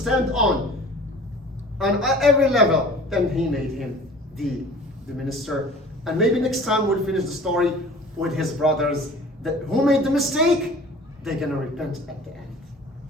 on every level. Then he made him the minister. And maybe next time we'll finish the story with his brothers that who made the mistake, they're gonna repent at the end.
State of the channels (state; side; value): normal; both; correlation 0.45